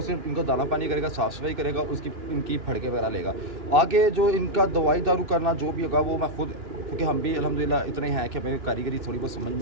सिर्फ इनको दाना पानी करेगा, साफ़ सफाई करेगा, उसकी इनकी फड़के वगैरह लेगा। आगे जो इनका दवाई दारू करना जो भी होगा वो मैं खुद, क्योंकि हम भी अल्हम्दुलिल्लाह इतने हैं कि हमें कारीगरी थोड़ी बहुत समझ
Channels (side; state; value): left; late; 2.9 ms